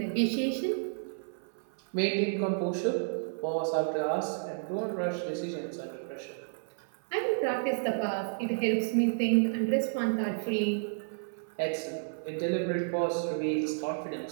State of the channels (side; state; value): left; silent; 55 dB below the other